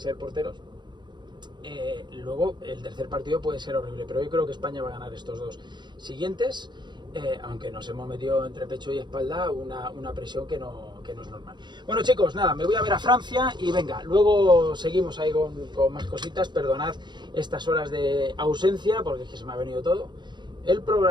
porteros. Luego el tercer partido puede ser horrible, pero yo creo que España va a ganar estos 2 siguientes, aunque nos hemos metido entre pecho y espalda una presión que no es normal. Bueno, chicos, nada, me voy a ver a Francia y venga, luego seguimos ahí con más cositas. Perdonad estas horas de ausencia porque es que se me ha venido todo. El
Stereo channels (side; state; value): left; late; 0.22 ms